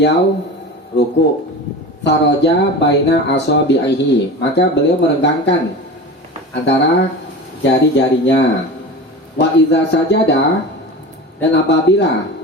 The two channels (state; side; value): normal; both; correlation 0.31